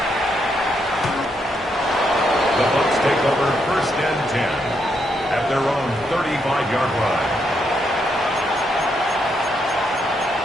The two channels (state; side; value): normal; both; correlation 0.78